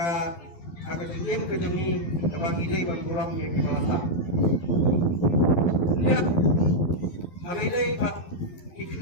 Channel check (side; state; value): right; late; 12 ms